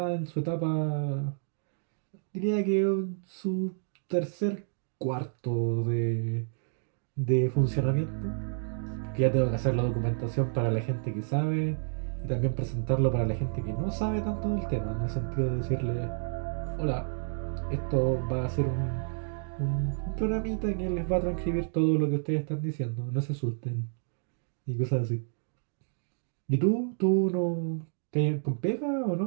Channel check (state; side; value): silent; left; digital silence